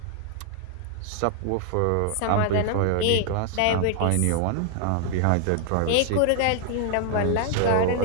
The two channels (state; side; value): different; both; correlation 0.00